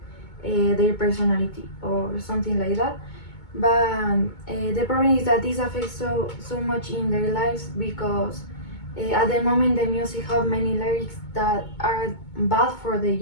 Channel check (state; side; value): late; right; 2.2 ms